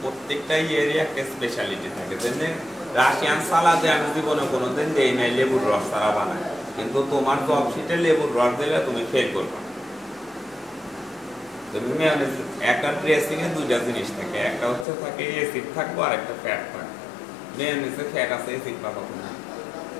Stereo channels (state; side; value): drops out; right; at 14.9 s